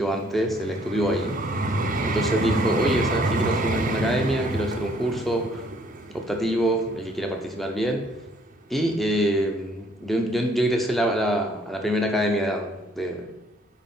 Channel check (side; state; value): both; normal; correlation 0.63